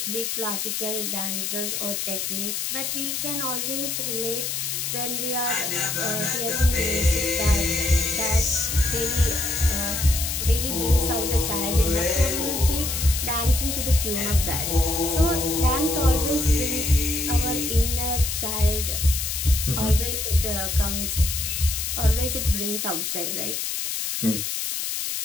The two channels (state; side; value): noise; left; hiss, 2 dB below the sound